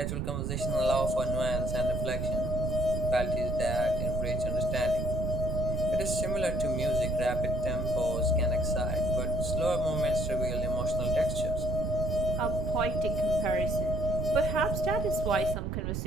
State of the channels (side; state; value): right; noise; rumble, 2 dB below the sound